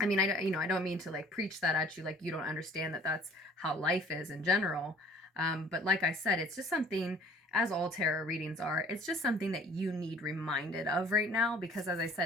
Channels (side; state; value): both; normal; correlation 0.53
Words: mean, I don't mean to like preach that at you, like you don't understand that that's how life is in general. But like I said, it's just something, as all tarot readings are, it's just something that you need reminded of right now, because as I